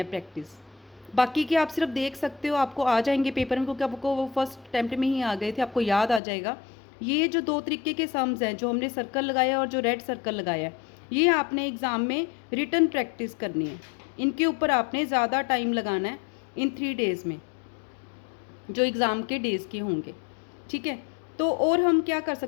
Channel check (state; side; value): drops out; right; at 6.2 s